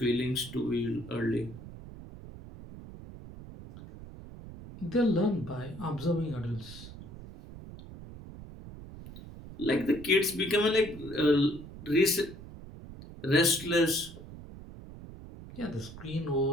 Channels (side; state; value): right; noise; rumble, 14 dB below the sound